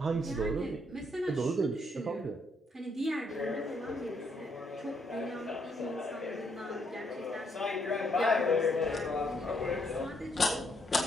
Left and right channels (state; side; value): normal; both; correlation 0.73